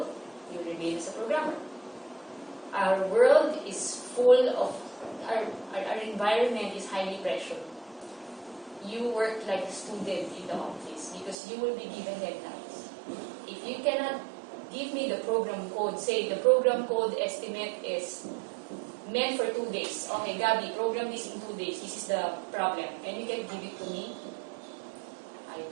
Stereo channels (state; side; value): drops out; left; at 11.4 s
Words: you remain as a programmer. Our world is full of, our environment is highly pressured. You work like a student in the office because you will be given deadlines. If you cannot give me the program code, say the program code estimate is meant for 2 days. Okay, Gabi, program this in 2 days. This is the problem. And you can give it to me, I